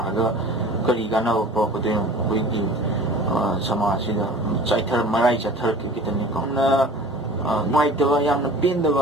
ga kari ga na ko ko de koi gi समाजसिदा चाइथर मराई चाथर कितनी को ना नुआइतवा यामना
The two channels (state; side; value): normal; both; correlation 0.42